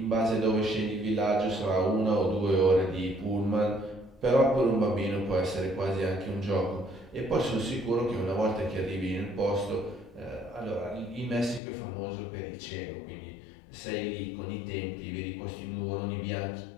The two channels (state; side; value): drops out; right; at 11.6 s